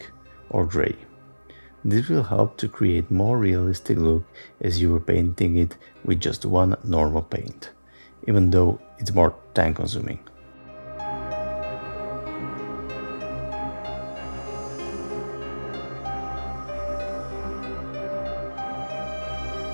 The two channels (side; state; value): both; inverted; correlation -1.00